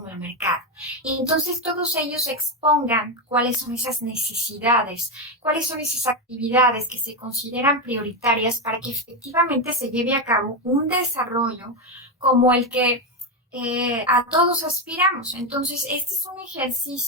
el mercado. Y entonces todos ellos expongan cuáles son esas necesidades, cuáles son esas actividades que se consideran prioritarias para que efectivamente se lleve a cabo un desarrollo como el que a todos aspiramos. Entonces, este es un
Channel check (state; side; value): normal; both; correlation 0.10